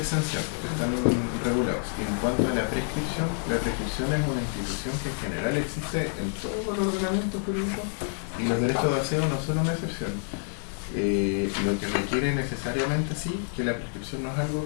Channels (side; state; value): right; silent; 59 dB below the other